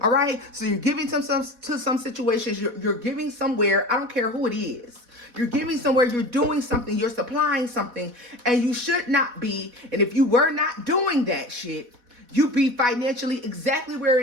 All right, so you're giving to some situations. You're giving somewhere. I don't care who it is. You're giving somewhere. You're doing something. You're supplying something, and you should not be. And if you were not doing that shit, you be financially exactly where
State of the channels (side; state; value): left; late; 4.1 ms